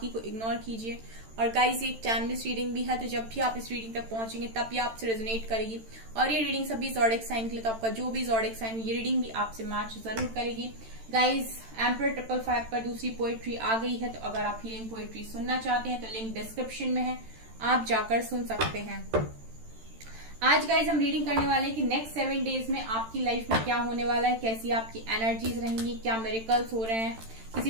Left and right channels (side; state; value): left; late; 13 ms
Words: को इग्नोर कीजिए। और गाइस, ये एक टाइमलेस रीडिंग भी है, तो जब भी आप इस रीडिंग तक पहुंचेंगे तब ये आपसे रेजोनेट करेगी। और ये रीडिंग सभी ज़ोडिएक साइन के लिए, तो आपका जो भी ज़ोडिएक साइन ये रीडिंग भी आपसे मैच जरूर करेगी। गाइस, एम्परर 555 पर दूसरी पोएट्री आ गई है, तो अगर आप हीलिंग पोएट्री सुनना चाहते हैं तो लिंक डिस्क्रिप्शन में है, आप जाकर सुन सकते हैं। आज गाइज हम रीडिंग करने वाले हैं कि नेक्स्ट 7 डेज में आपकी लाइफ में क्या होने वाला है, कैसी आपकी एनर्जीज रहेंगी, क्या मिरेकल्स हो रहे हैं। किसी